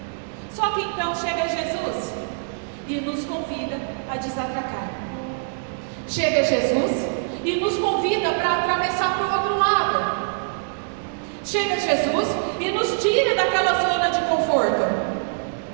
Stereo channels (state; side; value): silent; left; digital silence